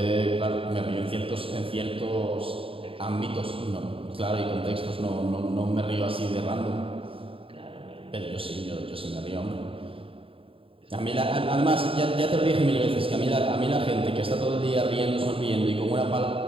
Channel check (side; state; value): left; late; 0.27 ms